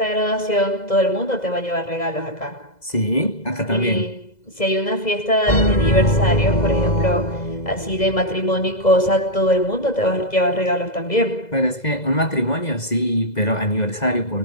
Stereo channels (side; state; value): right; late; 2.0 ms